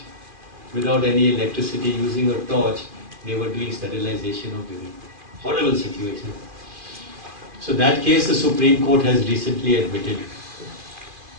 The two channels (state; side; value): late; left; 2.5 ms